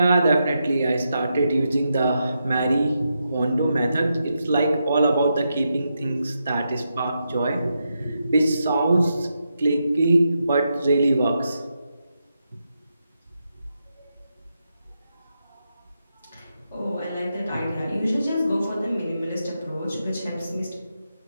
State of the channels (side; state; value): both; inverted; correlation -0.85